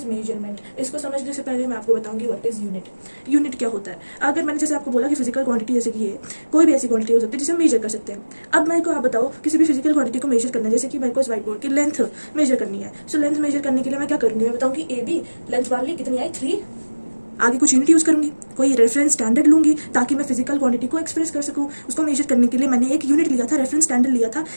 measurement? इसको समझने से पहले मैं आपको बताऊंगी व्हाट इज यूनिट। यूनिट क्या होता है? अगर मैंने जैसे आपको बोला कि फिजिकल क्वांटिटी जैसे कि ये कोई भी ऐसी क्वांटिटी हो सकती है जिसे हम मेजर कर सकते हैं। अब मेरे को आप बताओ, किसी भी फिजिकल क्वांटिटी को मेजर करना है, जैसे कि मेरे को इस व्हाइट बोर्ड की लेंथ मेजर करनी है। सो लेंथ मेजर करने के लिए मैं क्या करूंगी? मैं बताऊंगी ए बी, लेंथ मान ली कितनी आई 3, आगे कुछ यूनिट यूज करूंगी, कोई रेफरेंस स्टैंडर्ड लूंगी ताकि मैं फिजिकल क्वांटिटी को एक्सप्रेस कर सकूं। उसको मेजर करने के लिए मैंने एक यूनिट लिया था, रेफरेंस स्टैंडर्ड लिया था।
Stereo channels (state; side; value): inverted; both; correlation -1.00